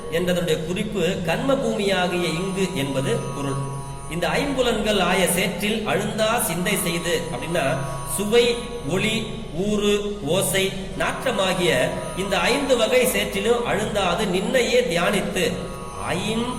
என்றதனுடைய குறிப்பு கர்ம பூமியாகிய இங்கு என்பது பொருள். இந்த 5 புலன்கள் ஆய சேற்றில் அழுந்தா சிந்தை செய்து அப்படின்னா சுவை ஒளி ஊறு ஓசை நாற்றமாகிய இந்த 5 வகை சேற்றிலும் அழுந்தாது நின்னையே தியானித்து 5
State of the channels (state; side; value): identical; both; correlation 1.00